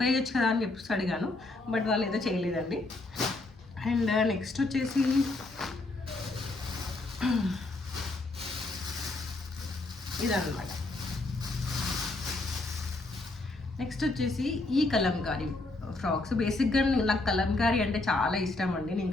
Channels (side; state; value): right; quieter; 3.0 dB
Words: వేయచ్చు కదా అని చెప్పేసి అడిగాను. బట్ వాళ్ళు ఏదో చేయలేదండి. అండ్ నెక్స్ట్ వచ్చేసి ఇదన్నమాట. నెక్స్ట్ వచ్చేసి ఈ కలంకారీ ఫ్రాక్స్. బేసిక్గా నాకు కలంకారీ అంటే చాలా ఇష్టం అండి. నేను